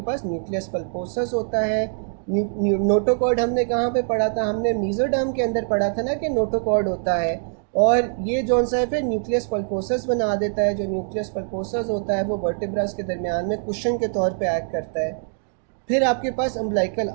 पास न्यूक्लियस पल्पोसस होता है। नोटोकॉर्ड हमने कहाँ पे पढ़ा था, हमने मीजोडर्म के अंदर पढ़ा था ना कि नोटोकॉर्ड होता है, और ये जौन सा है फिर न्यूक्लियस पल्पोसस बना देता है। जो न्यूक्लियस पल्पोसस होता है वो वर्टिब्रास के दरमियान में कुशन के तौर पे एक्ट करता है। फिर आपके पास अम्बलाइकल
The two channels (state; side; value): silent; left; digital silence